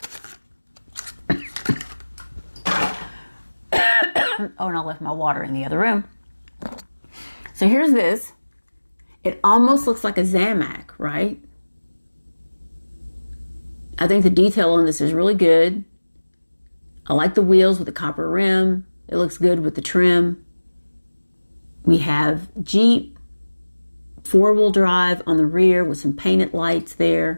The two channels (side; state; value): both; inverted; correlation -1.00